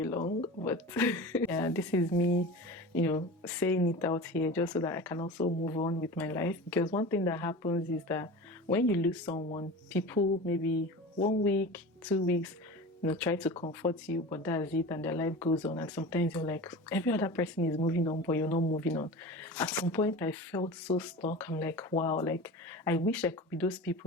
long, but yeah, this is me saying it out here just so that I can also move on with my life. Because one thing that happens is that when you lose someone, people maybe 1 week, 2 weeks try to comfort you, but that's it, and their life goes on. And sometimes you're like, every other person is moving on, but you're not moving on. At some point I felt so stuck. I'm like, wow, like I wish I could be those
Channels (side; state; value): both; normal; correlation 0.33